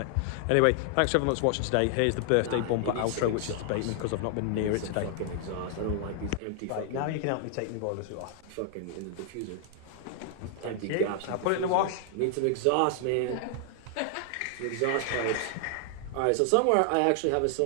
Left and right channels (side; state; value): both; different; correlation 0.00